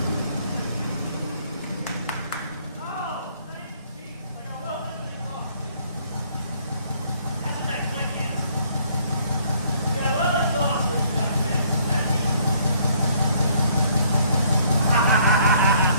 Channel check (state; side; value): inverted; both; correlation -0.63